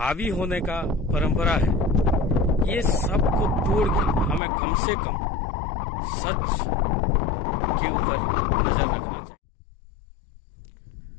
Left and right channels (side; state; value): right; drops out; at 4.4 s